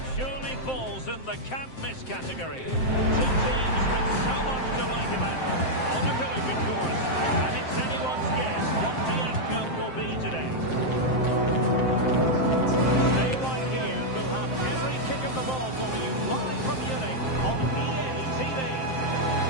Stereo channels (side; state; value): right; late; 7.7 ms